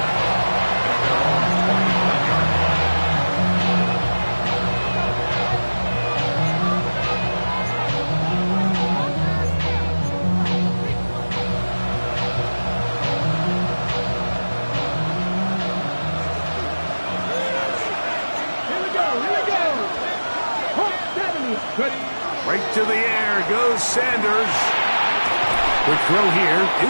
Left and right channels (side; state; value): both; inverted; correlation -1.00